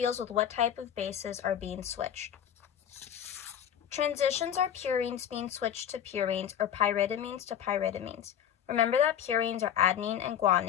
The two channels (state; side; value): quieter; right; 9.5 dB